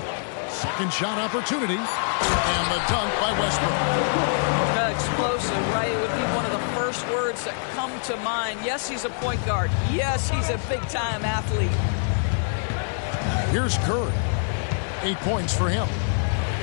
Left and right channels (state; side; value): silent; right; digital silence